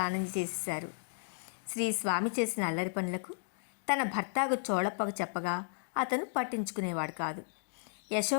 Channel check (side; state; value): right; silent; digital silence